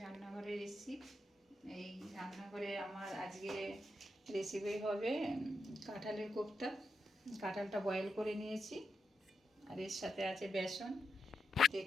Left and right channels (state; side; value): normal; both; correlation 0.85